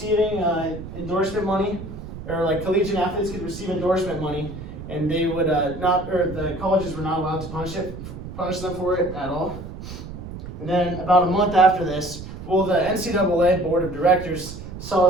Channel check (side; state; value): right; noise; rumble, 11 dB below the sound